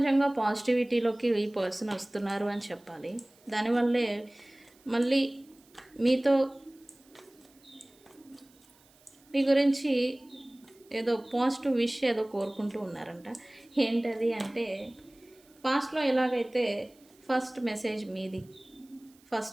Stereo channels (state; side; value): noise; right; hiss, 30 dB below the sound